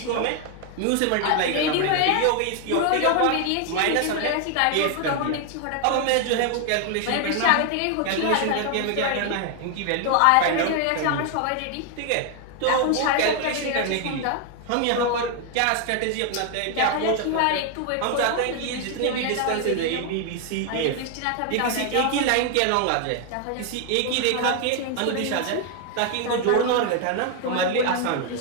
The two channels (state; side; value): different; both; correlation 0.00